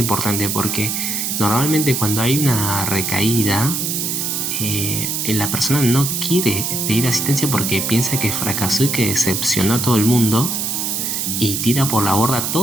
porque normalmente cuando hay una recaída, la persona no quiere pedir asistencia porque piensa que fracasó y que decepcionó a todo el mundo y tira por la borda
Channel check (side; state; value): right; noise; hiss, 1 dB below the sound